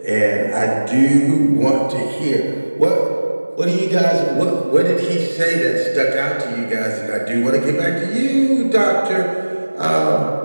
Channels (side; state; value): both; inverted; correlation -1.00